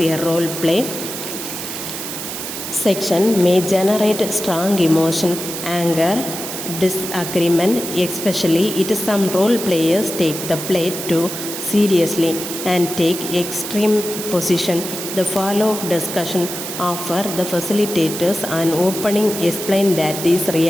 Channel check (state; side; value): noise; right; hiss, 7 dB below the sound